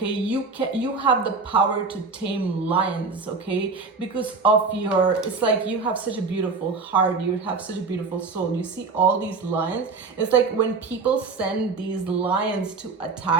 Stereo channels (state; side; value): quieter; left; 4.4 dB